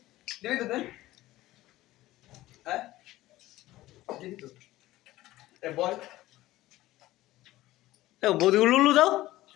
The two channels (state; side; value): quieter; right; 16.6 dB